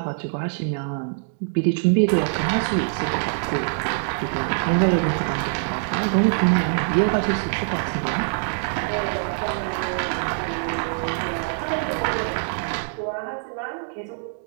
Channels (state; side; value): silent; left; digital silence